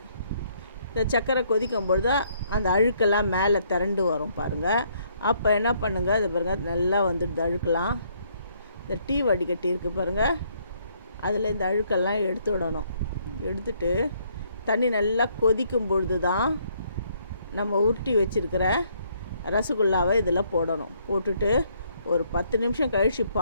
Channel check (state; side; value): inverted; both; correlation -0.68